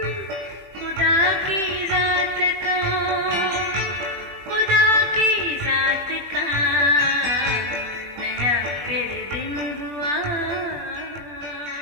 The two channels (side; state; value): left; late; 20 ms